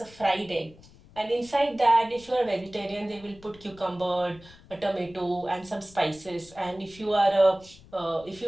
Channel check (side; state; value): left; noise; rumble, 23 dB below the sound